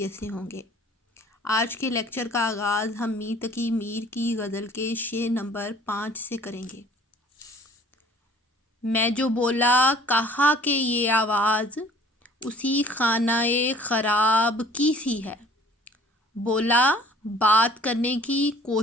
سے ہوں گے۔ آج کے لیکچر کا آغاز ہم میر تقی میر کی غزل کے شعر نمبر 5 سے کریں گے۔ میں جو بولا کہا کہ یہ آواز اسی خانہ خراب کی سی ہے، بولا بات کرنے کی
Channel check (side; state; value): both; normal; correlation 0.51